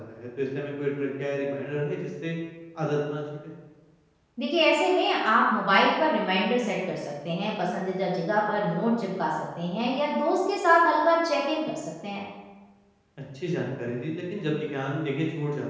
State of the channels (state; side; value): identical; both; correlation 1.00